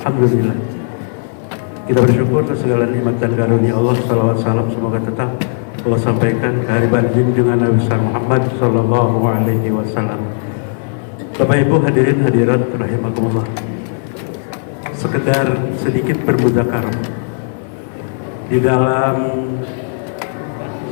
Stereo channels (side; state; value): right; silent; 69 dB below the other